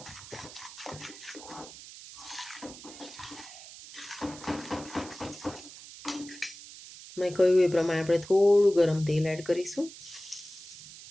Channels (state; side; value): noise; right; hiss, 15 dB below the sound